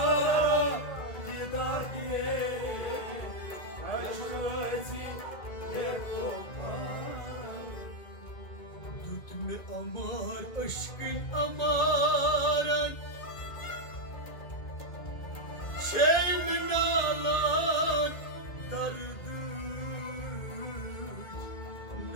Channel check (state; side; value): late; right; 2.2 ms